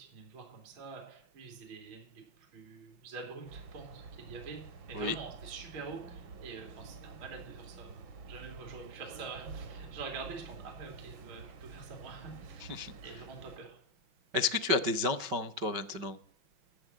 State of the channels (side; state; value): left; late; 5.3 ms